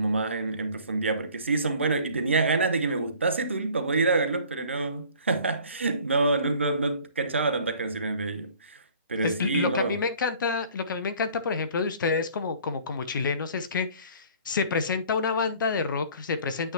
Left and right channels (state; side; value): inverted; both; correlation -0.52